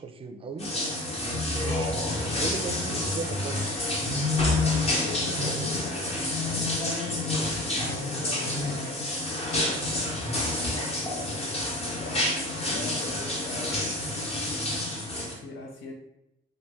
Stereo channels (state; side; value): normal; both; correlation 0.34